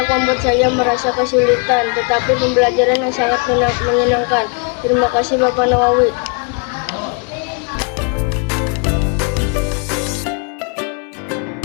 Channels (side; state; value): right; quieter; 35.8 dB